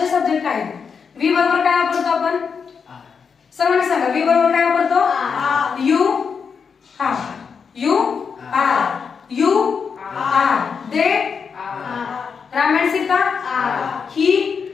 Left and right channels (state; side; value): quieter; right; 6.0 dB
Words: सब्जेक्ट आहेत, वी बरोबर काय वापरतो आपण, सर्वांनी सांगा. वी बरोबर काय वापरतो, यू. हा you are. You are. They Ram and Sita. He